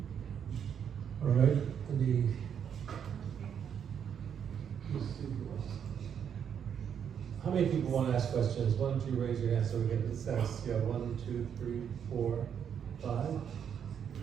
All right, how many people want to ask questions? Why don't you raise your hand so we get the sense? Yeah, 1, 2, 3, 4, 5?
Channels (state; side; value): quieter; left; 8.1 dB